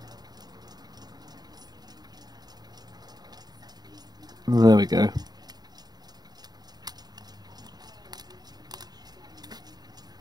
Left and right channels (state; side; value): late; left; 0.20 ms